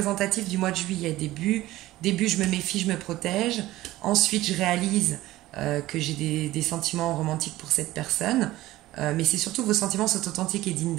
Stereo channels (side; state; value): left; quieter; 16.6 dB